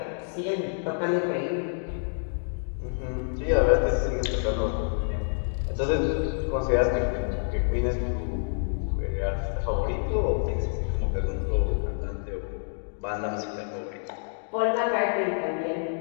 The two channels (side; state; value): right; silent; digital silence